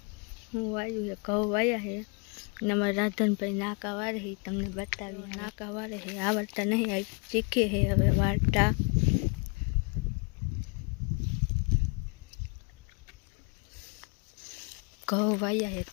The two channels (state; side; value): quieter; right; 33.7 dB